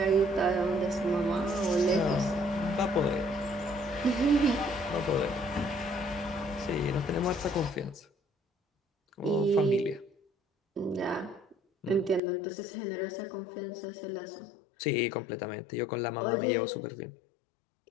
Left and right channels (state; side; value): drops out; right; at 12.2 s